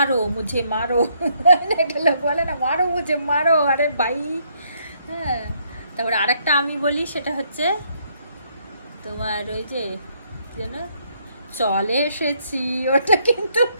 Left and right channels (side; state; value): both; inverted; correlation -0.71